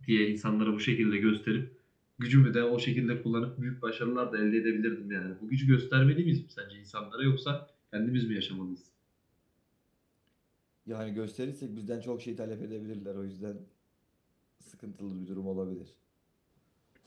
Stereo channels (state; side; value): identical; both; correlation 1.00